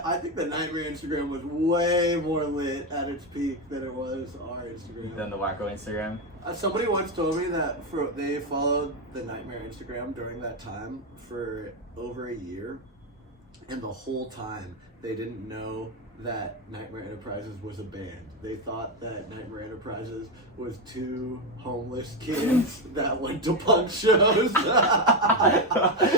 I think the Nightmare Instagram was way more lit at its peak than it was our Instagram. Than the Wacko Instagram? Somebody once told me that they followed the Nightmare Instagram during that time for over a year. And the whole time, they didn't know that Nightmare Enterprises was a band. They thought that Nightmare Enterprises was 2 homeless kids that went to punk shows. And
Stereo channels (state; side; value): normal; both; correlation 0.09